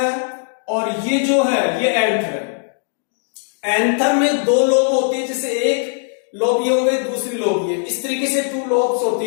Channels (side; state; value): right; silent; 67 dB below the other